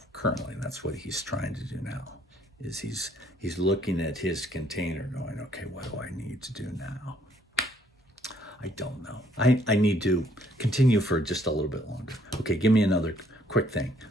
currently that's what he's trying to do now. Is he's looking at his container going, okay, what do I need to do now? I don't know. I need to continue for just a little bit longer. Okay, give me another quick thing,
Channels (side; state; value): both; normal; correlation 0.65